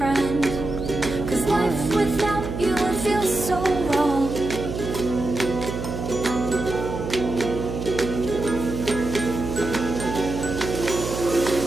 'cause life without you would feel so wrong.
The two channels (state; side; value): noise; right; hum, 5 dB below the sound